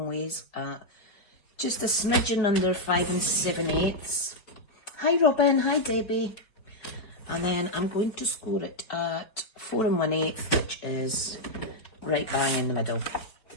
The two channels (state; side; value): late; right; 4.7 ms